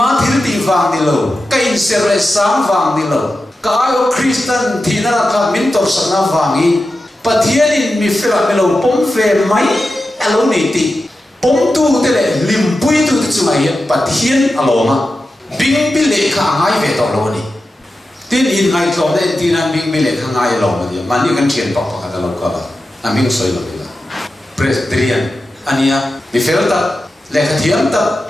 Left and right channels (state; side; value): normal; both; correlation 0.91